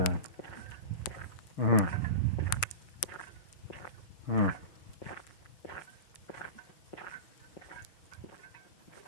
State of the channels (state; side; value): late; right; 6.6 ms